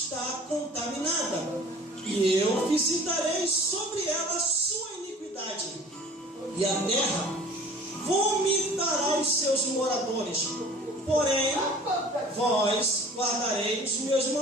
contaminada, e eu visitarei sobre ela a sua iniquidade, e a terra vomitará os seus moradores. Porém, vós guardareis os meus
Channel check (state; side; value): normal; both; correlation 0.47